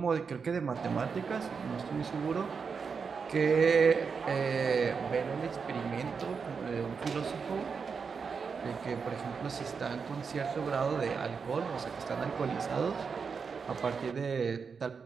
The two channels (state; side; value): quieter; left; 5.6 dB